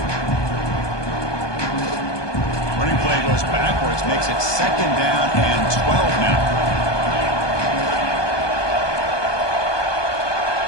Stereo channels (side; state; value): right; late; 1.2 ms